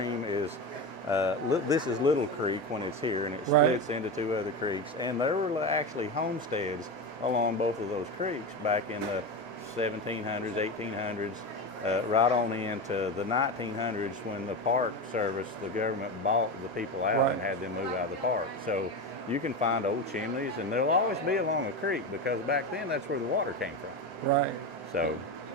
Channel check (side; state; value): both; normal; correlation 0.20